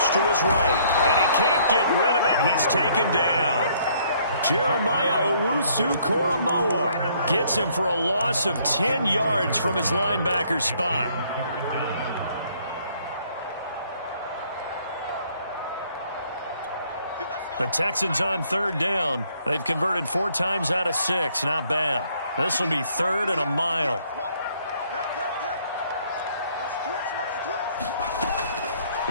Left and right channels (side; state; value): both; inverted; correlation -0.64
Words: to his right, and he can't get rid of it. He's taken down. Jeremiah Owusu-Koramoah gets him for a loss of 10 yards from his linebacker spot. The Texans on 3rd down. They've converted 4 times out of 6. Not bad. This will be 3rd and a mile.